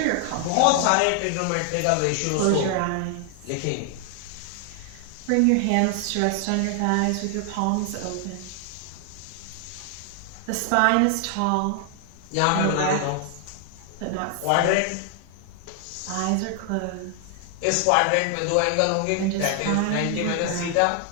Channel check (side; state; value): both; different; correlation 0.00